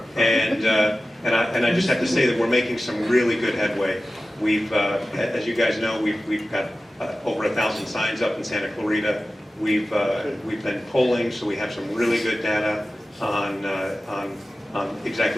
And I just have to say that we're making some really good headway. We've, as you guys know, we've got over 1,000 signs up in Santa Clarita. We've been polling, so we have some really good data on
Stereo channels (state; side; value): normal; both; correlation 0.95